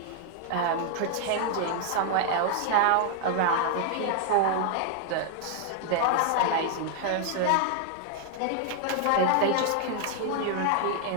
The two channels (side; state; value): both; different; correlation 0.00